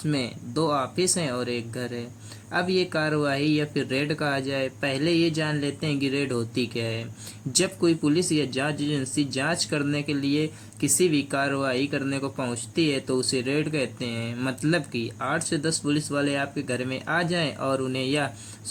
2 ऑफिस हैं और एक घर है। अब ये कार्रवाई या फिर रेड कहा जाए, पहले ये जान लेते हैं कि रेड होती क्या है। जब कोई पुलिस या जांच एजेंसी जांच करने के लिए किसी भी कार्रवाई करने को पहुंचती है तो उसे रेड कहते हैं। मतलब कि 8 से 10 पुलिस वाले आपके घर में आ जाएं और उन्हें यह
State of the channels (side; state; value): both; identical; correlation 1.00